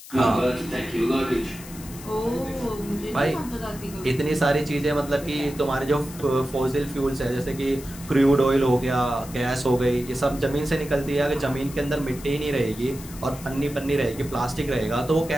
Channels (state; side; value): noise; left; hiss, 16 dB below the sound